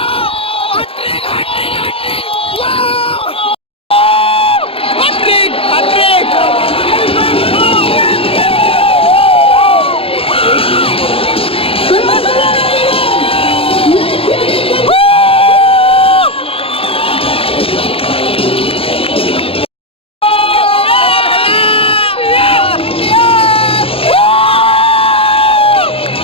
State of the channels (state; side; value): late; right; 0.27 ms